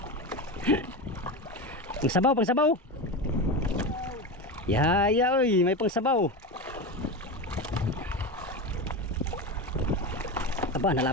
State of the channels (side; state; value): both; normal; correlation 0.21